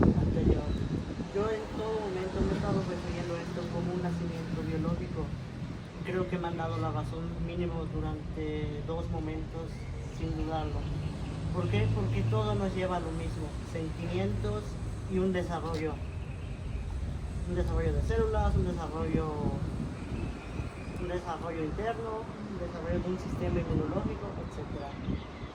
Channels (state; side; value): identical; both; correlation 1.00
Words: anterior. Yo en todo momento me he estado refiriendo a esto como un nacimiento biológico. Creo que me han dado la razón mínimo durante 2 momentos, sin dudarlo. ¿Por qué? Porque todo nos lleva a lo mismo, sentimientos y un desarrollo. Un desarrollo de células, un desarrollo interno, un desarrollo de un sistema inmunológico, etc.